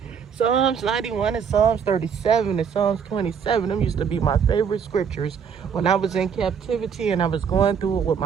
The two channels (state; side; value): quieter; left; 7.0 dB